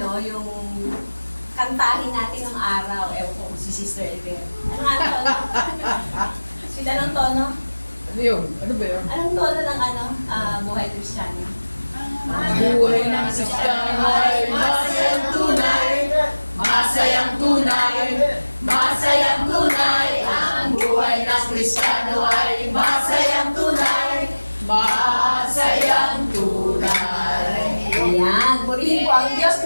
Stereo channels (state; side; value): inverted; both; correlation -1.00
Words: yung kantahin natin ng araw? Ewan ko si Sister Ever. Ano nga tono? Sila ng tono? Ano yun? Ano ba yun? Anong tono ng buhay Kristiyano? Buhay ng Kristiyano ay masayang tunay, masayang tunay, masayang tunay. Ang buhay ng Kristiyano ay masayang tunay, masayang tunay. Ayan, purihin po ang Diyos,